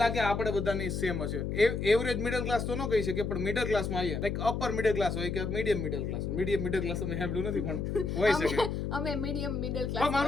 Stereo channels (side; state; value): left; noise; hum, 2 dB below the sound